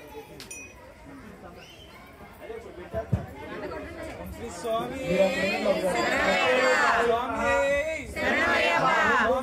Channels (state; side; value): identical; both; correlation 1.00